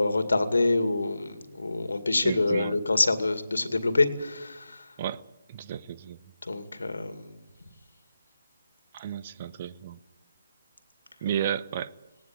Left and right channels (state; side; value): inverted; both; correlation -0.89